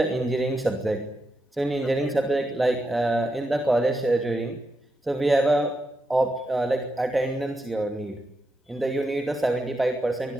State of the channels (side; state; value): both; normal; correlation 0.84